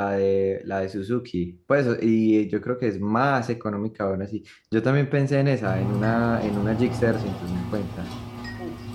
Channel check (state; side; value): identical; both; correlation 1.00